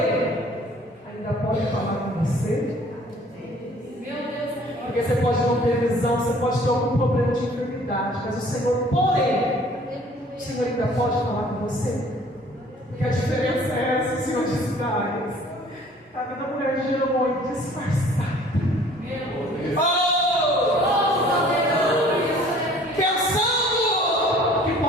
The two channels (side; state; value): both; normal; correlation 0.53